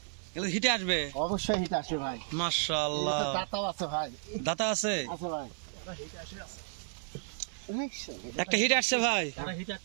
এগুলো হিটে আসবে। অবশ্যই হিট আসে ভাই। মাশাআল্লাহ, এটাতে দাঁতাও আছে ভাই, দাতা আছে, আছে ভাই। একটা হিট আসছে ভাই।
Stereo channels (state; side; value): silent; left; 56 dB below the other